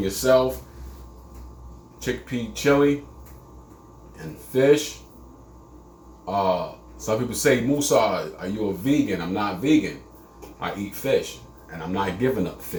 Chickpea chili and fish. Some people say, Musa, are you a vegan? I'm not vegan. I eat fish, and I'm not giving up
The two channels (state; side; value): identical; both; correlation 1.00